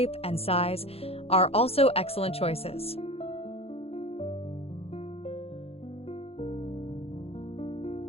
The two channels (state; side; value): late; right; 0.29 ms